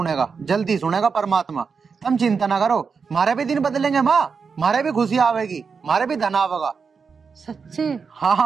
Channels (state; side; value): quieter; left; 5.5 dB